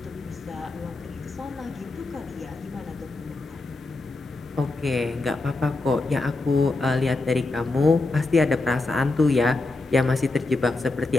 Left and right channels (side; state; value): right; quieter; 3.2 dB